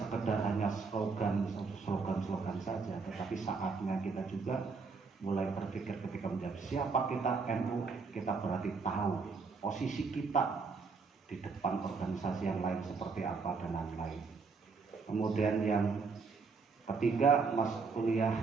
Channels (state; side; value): quieter; left; 4.7 dB